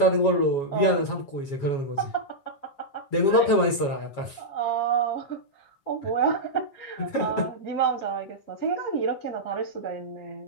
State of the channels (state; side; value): late; right; 7.2 ms